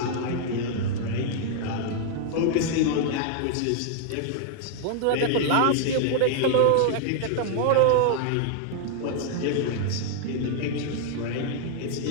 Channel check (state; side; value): different; both; correlation 0.00